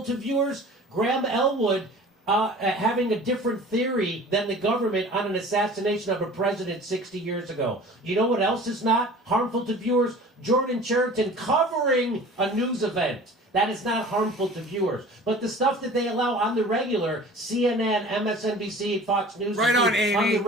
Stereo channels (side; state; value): both; normal; correlation 0.43